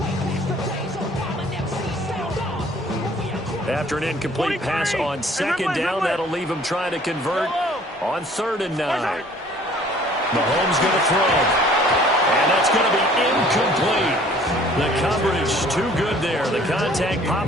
After an incomplete pass on second down, that'll leave him trying to convert on 3rd and 9. Mahomes going to throw. And that's going to be incomplete. The coverage too good there. The contact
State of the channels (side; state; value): both; normal; correlation 0.54